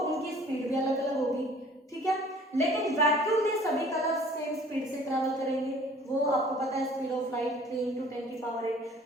स्पीड भी अलग अलग होगी, ठीक है। लेकिन वैक्यूम में सभी कलर सेम स्पीड से ट्रैवल करेंगे, वो आपको पता है स्पीड ऑफ लाइट 3 × 10⁸।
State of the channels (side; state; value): both; normal; correlation 0.51